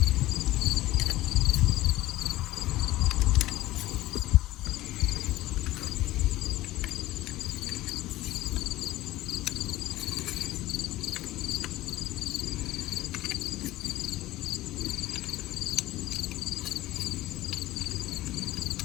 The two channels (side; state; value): right; quieter; 16.9 dB